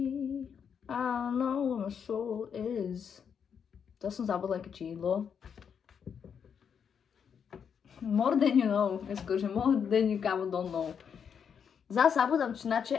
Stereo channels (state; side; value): quieter; right; 7.3 dB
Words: I don't know where my soul is. To som zabudla aké čídlo. More than you know. Skôrže more than you kámo don't know. Zase zabudám činače